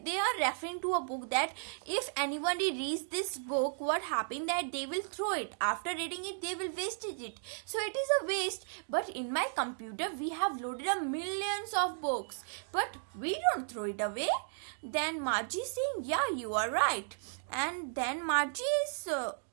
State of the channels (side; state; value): left; silent; digital silence